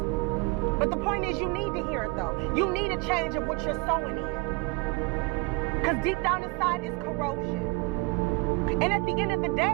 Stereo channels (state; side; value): quieter; left; 27.8 dB